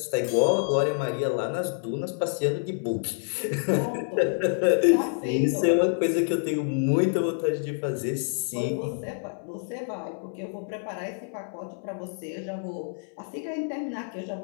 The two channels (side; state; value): right; silent; 60 dB below the other